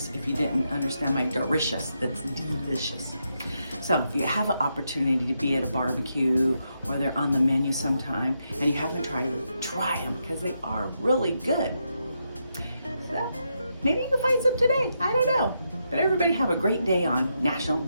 If you didn't understand my delicious, that's delicious. So if you have an opportunity to be at a barbecue or they're on the menu sometime and you haven't tried them, try them because they are really good. So maybe you can find some today. I don't know. But everybody have a great day on National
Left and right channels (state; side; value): inverted; both; correlation -0.83